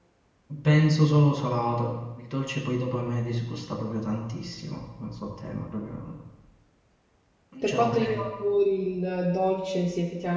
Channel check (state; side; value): identical; both; correlation 1.00